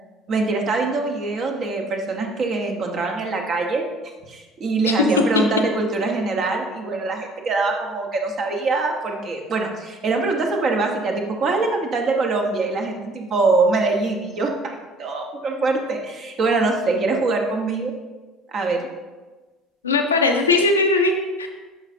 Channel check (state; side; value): normal; both; correlation 0.47